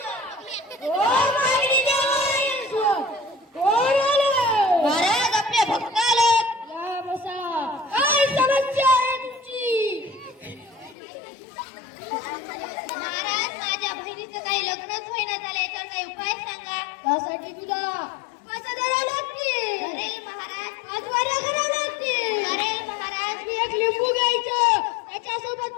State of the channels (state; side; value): drops out; right; at 11.0 s